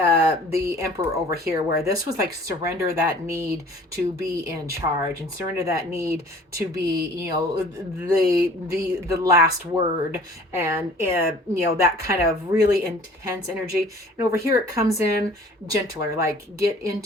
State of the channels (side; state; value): both; normal; correlation 0.49